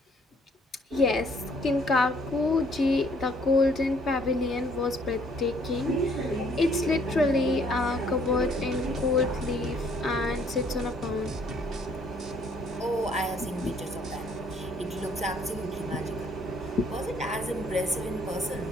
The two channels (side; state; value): both; normal; correlation 0.63